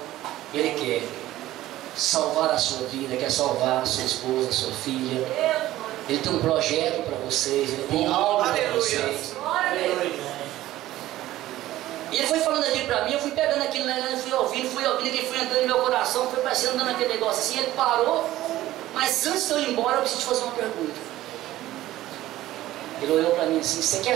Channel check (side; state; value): left; quieter; 15.1 dB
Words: Ele quer salvar a sua vida, quer salvar a sua esposa, a sua filha. Ele tem um projeto para vocês, Ele tem algo para vocês. E ele foi falando aquilo para mim, eu fui pegando aquilo, fui ouvindo, ele foi entrando no meu coração, foi parecendo dando aquele negócio assim, ele parou. Mas antes de eu ir embora, eu preciso te fazer uma pergunta. Ele olhou para mim assim, você quer